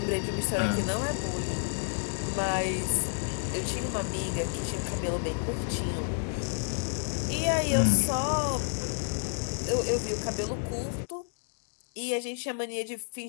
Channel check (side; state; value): right; silent; 58 dB below the other